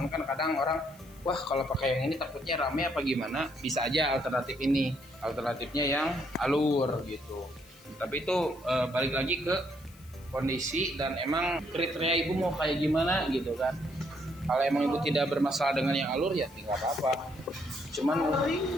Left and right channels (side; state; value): left; noise; hiss, 25 dB below the sound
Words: kan kadang orang, wah kalau pakai yang ini takutnya rame apa gimana, bisa aja alternatif ini, alternatifnya yang alur gitu. Tapi itu balik lagi ke kondisi dan emang kriteria ibu mau kayak gimana gitu kan. Kalau emang ibu tidak bermasalah dengan yang alur ya tidak apa-apa. Cuman paling